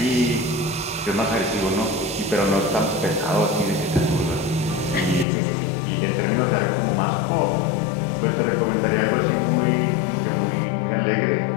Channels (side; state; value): right; drops out; at 5.2 s